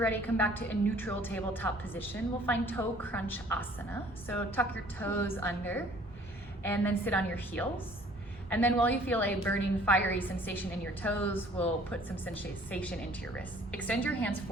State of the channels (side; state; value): both; normal; correlation 0.55